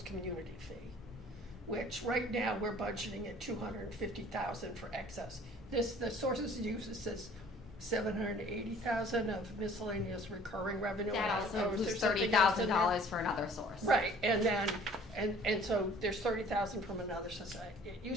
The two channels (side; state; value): both; normal; correlation 0.52